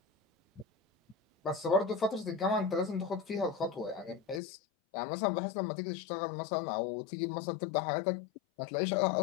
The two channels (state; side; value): drops out; right; at 4.4 s